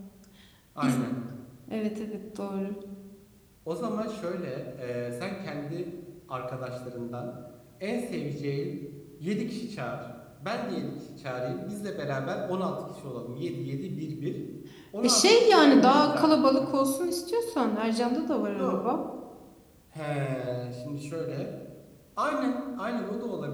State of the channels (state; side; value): identical; both; correlation 1.00